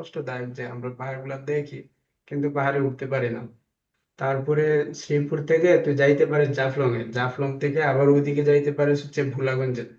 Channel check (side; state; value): both; identical; correlation 1.00